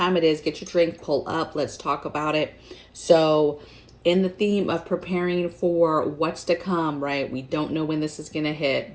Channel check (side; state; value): both; identical; correlation 1.00